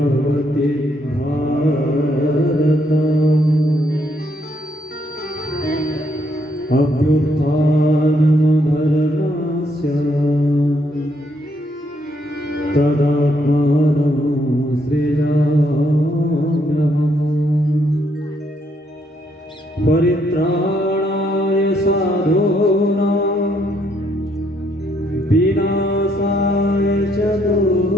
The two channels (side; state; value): both; normal; correlation 0.72